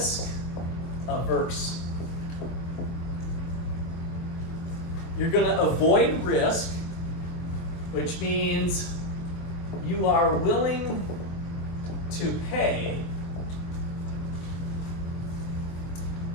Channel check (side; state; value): right; late; 23 ms